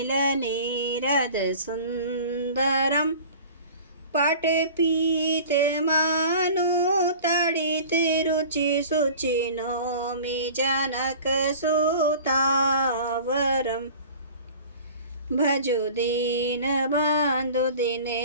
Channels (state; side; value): inverted; both; correlation -0.42